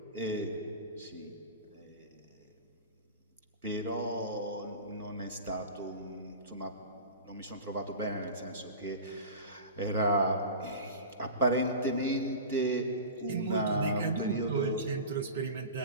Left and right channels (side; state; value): both; inverted; correlation -0.32